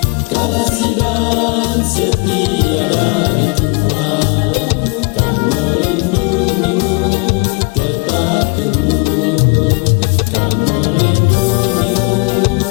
kasih dan setia dari Tuhan kan melindungimu tetap teguh, kan melindungimu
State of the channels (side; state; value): right; quieter; 29.0 dB